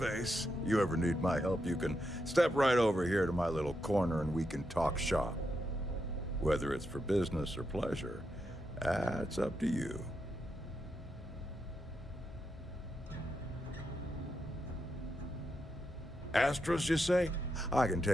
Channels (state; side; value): normal; both; correlation 0.84